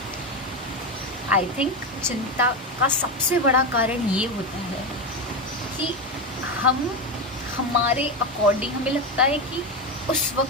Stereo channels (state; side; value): normal; both; correlation 0.14